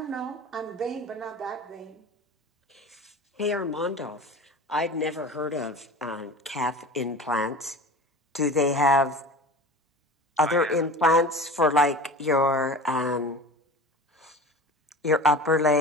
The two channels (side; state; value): both; normal; correlation 0.36